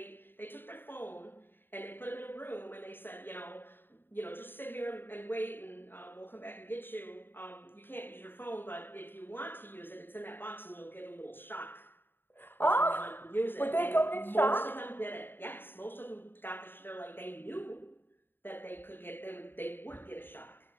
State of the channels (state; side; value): late; right; 0.097 ms